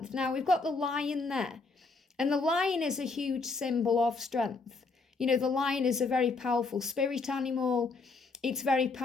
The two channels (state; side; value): quieter; right; 4.0 dB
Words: Now we've got the lion there. And the lion is a huge symbol of strength. The lion is a very powerful spirit animal. It's very